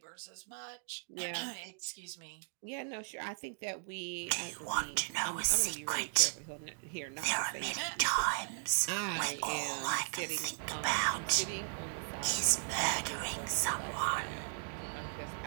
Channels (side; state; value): left; silent; digital silence